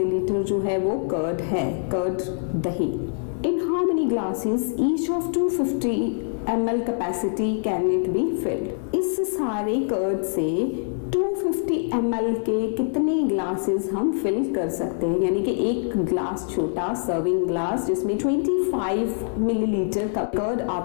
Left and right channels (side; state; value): right; silent; 60 dB below the other